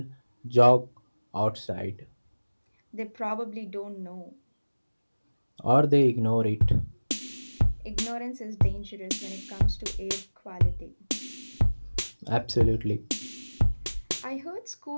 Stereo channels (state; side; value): inverted; both; correlation -1.00